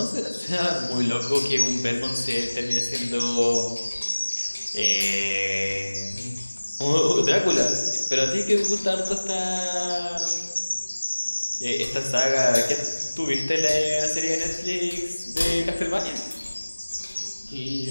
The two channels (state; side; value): inverted; both; correlation -1.00